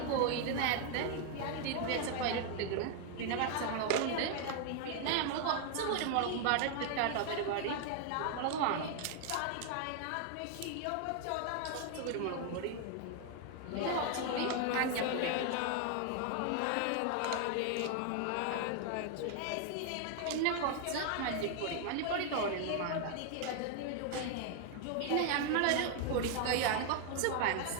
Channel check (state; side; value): different; both; correlation 0.00